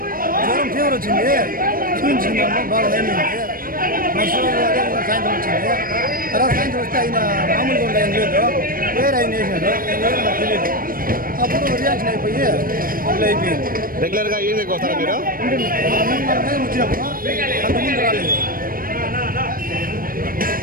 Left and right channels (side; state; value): left; late; 0.41 ms